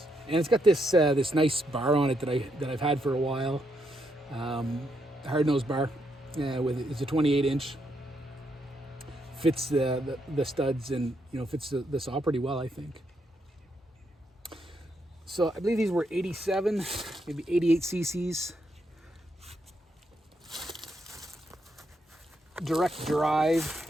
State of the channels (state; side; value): normal; both; correlation 0.78